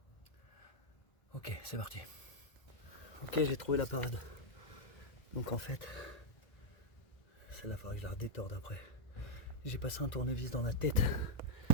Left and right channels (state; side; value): late; right; 2.0 ms